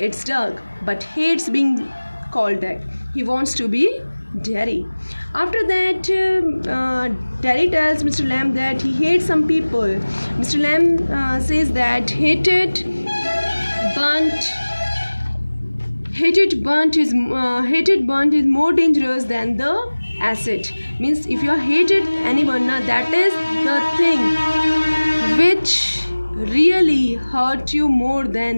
Doug, but hates being called that. He wants to be Derry. After that, Derry tells Mr. Lamb that he hates some people. Mr. Lamb says that hated, burnt, Hated burnt is more dangerous than the acid. Means if you are hated anyone, that is the thing which really hurt you more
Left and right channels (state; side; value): inverted; both; correlation -1.00